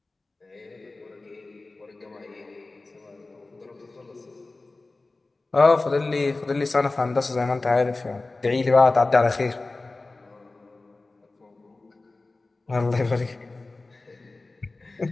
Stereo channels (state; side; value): quieter; right; 3.3 dB